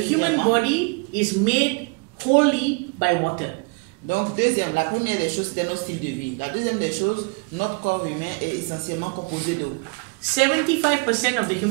body is made wholly by water. Donc deuxième, la première des choses, c'est notre style de vie. La deuxième des choses, notre corps humain est essentiellement composé d'eau. 75% of the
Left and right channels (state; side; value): quieter; left; 32.0 dB